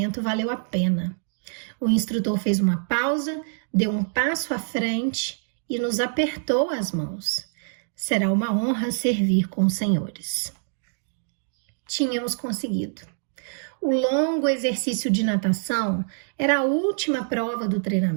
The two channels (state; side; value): silent; left; digital silence